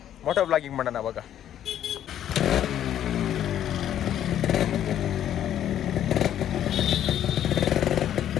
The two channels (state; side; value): quieter; right; 10.8 dB